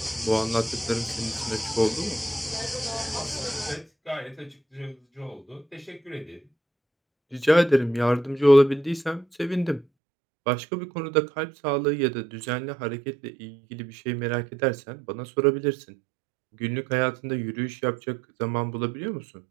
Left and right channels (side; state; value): left; drops out; at 9.9 s